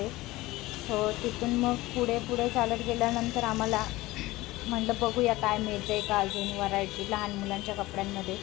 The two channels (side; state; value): right; quieter; 19.0 dB